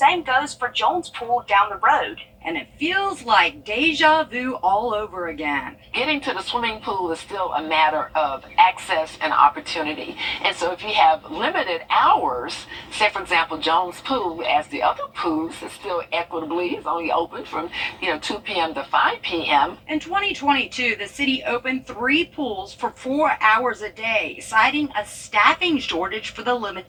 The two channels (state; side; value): identical; both; correlation 1.00